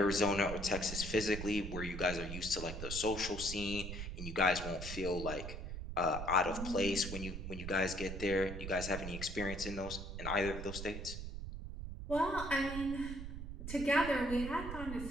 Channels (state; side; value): noise; right; rumble, 7 dB below the sound